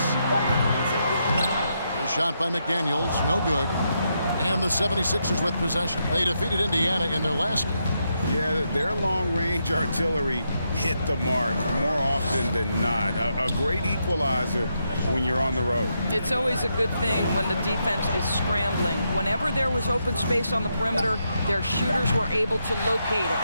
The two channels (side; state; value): both; inverted; correlation -0.81